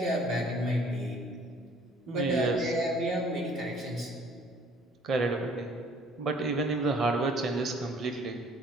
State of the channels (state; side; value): normal; both; correlation 0.56